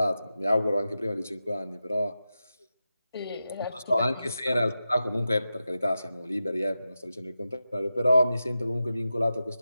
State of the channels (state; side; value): inverted; both; correlation -0.91